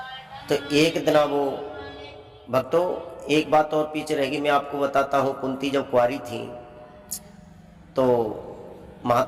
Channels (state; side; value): identical; both; correlation 1.00